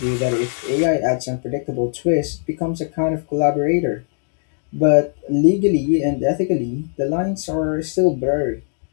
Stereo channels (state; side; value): silent; right; 65 dB below the other